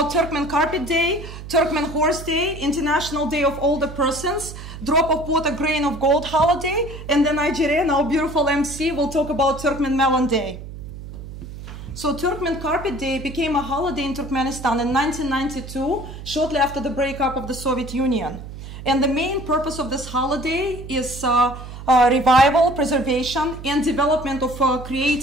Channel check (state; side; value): noise; right; hum, 12 dB below the sound